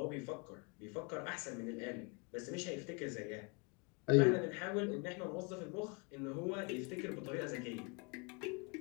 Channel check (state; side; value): quieter; right; 33.1 dB